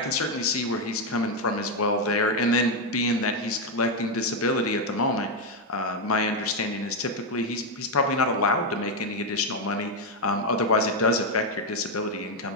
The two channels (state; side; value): normal; both; correlation 0.03